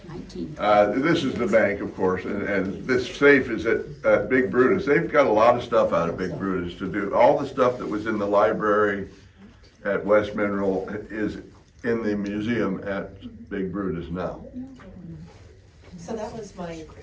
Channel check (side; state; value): both; identical; correlation 1.00